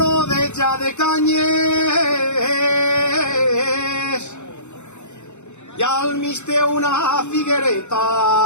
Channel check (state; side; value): late; right; 0.83 ms